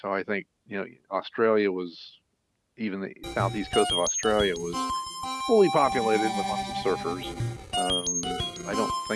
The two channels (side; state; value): both; identical; correlation 1.00